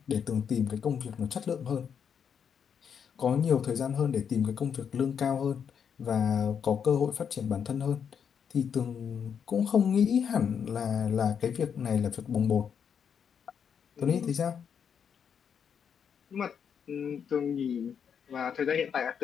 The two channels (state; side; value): quieter; right; 7.4 dB